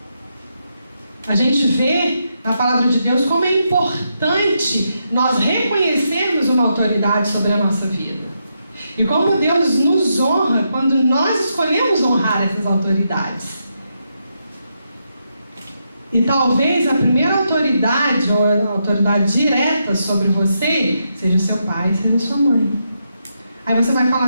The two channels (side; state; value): both; inverted; correlation -0.82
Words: A gente vê na palavra de Deus como é importante nós reconhecermos uma autoridade sobre a nossa vida. E como Deus nos honra quando nós escolhemos honrar essas autoridades. E talvez a primeira autoridade, ou a autoridade direta sobre você, seja o seu pai, seja a sua mãe. Aí você vai falar